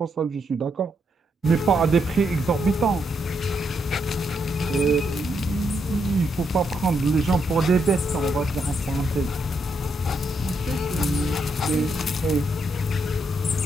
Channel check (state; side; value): normal; both; correlation 0.78